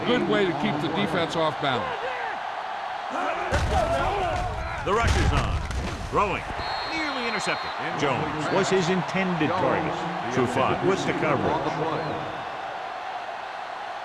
good way to keep the defense off balance. The rush is on. Throwing. Nearly intercepted. Jones was his intended target. Trufant with the coverage.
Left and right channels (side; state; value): both; identical; correlation 1.00